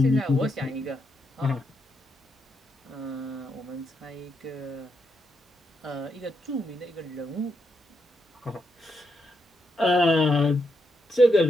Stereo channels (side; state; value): both; normal; correlation 0.81